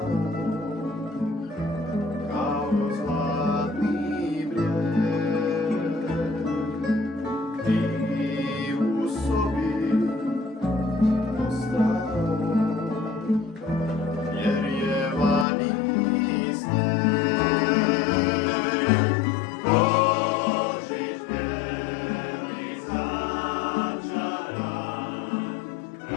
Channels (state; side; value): drops out; right; at 15.5 s